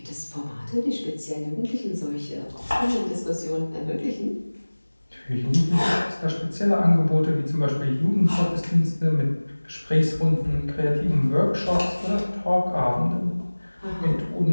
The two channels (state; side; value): inverted; both; correlation -1.00